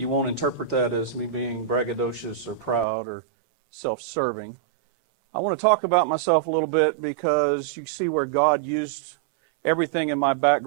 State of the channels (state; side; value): drops out; left; at 2.9 s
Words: won't interpret that as me being braggadocious or proud or self-serving. I want to talk about myself a little bit because you see where God used everything in my